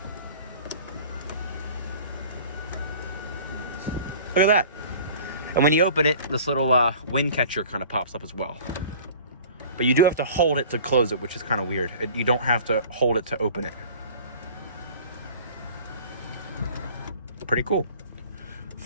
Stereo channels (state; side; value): inverted; both; correlation -0.45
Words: Look at that. And when you open it, this little wind catcher kind of pops up as well. But you do have to hold it to close it, which is kind of weird. You don't have to hold it to open it. Pretty cool.